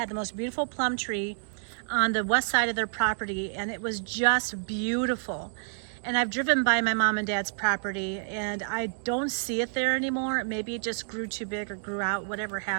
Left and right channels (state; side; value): silent; left; digital silence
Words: the most beautiful plum tree on the west side of their property, and it was just beautiful. And I've driven by my mom and dad's property, and I don't see it there anymore. Maybe it just grew too big or grew out, whatever